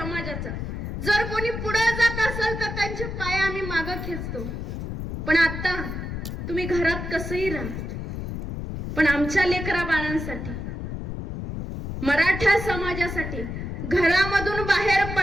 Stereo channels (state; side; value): noise; left; rumble, 6 dB below the sound